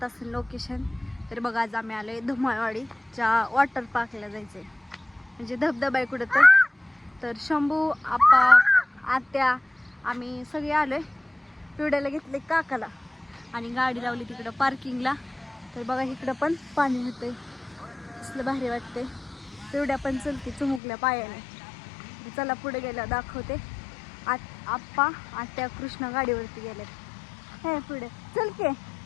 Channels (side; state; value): right; drops out; at 20.8 s